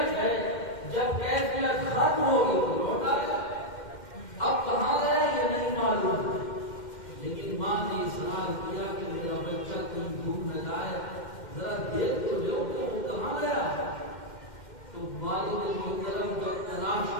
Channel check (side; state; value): right; late; 2.1 ms